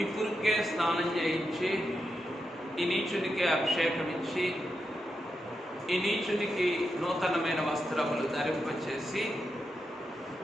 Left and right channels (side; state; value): both; normal; correlation 0.86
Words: పురుకే స్నానం చేయించి, ఈ నీచునికి అభిషేకం ఇచ్చి, ఈ నీచునికి నూతనమైన వస్త్రములు ధరింపచేసి,